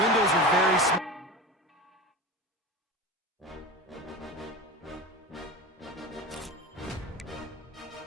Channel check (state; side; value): normal; both; correlation 0.29